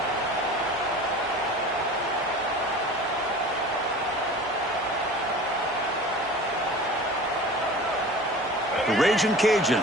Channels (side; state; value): both; normal; correlation 0.39